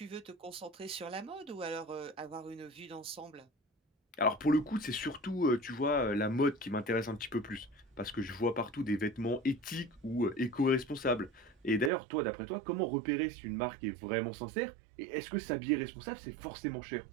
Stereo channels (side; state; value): left; drops out; at 11.9 s